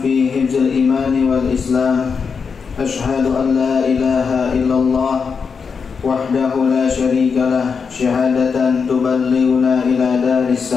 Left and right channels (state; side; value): quieter; right; 5.7 dB